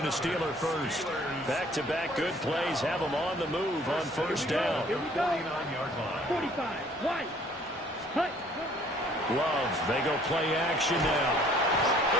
and a Steeler first. Back-to-back good plays have them on the move on 1st down. 49-yard line. 45, White, Hut. Love, they go play action now.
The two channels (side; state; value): both; normal; correlation 0.57